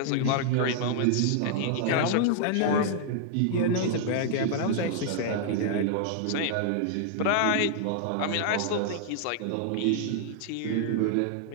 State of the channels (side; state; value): both; different; correlation -0.01